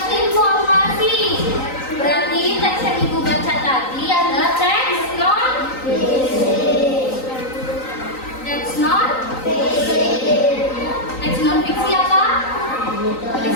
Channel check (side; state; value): right; late; 3.9 ms